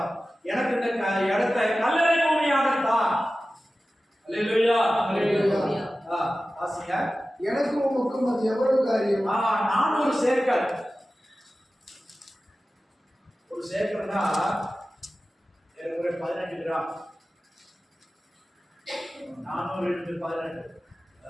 எனக்கு இந்த இடத்தை கல்லறை பூமியாகத்தான். அல்லேலூயா. ஆசியா, எனக்கு உமக்கும் அது எவ்வளவு காரியம்? 400 சேக்கல். ஒரு சேக்கல்னா ஏறக்குறைய 18 கிராம். 400 into 18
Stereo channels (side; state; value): both; normal; correlation 0.95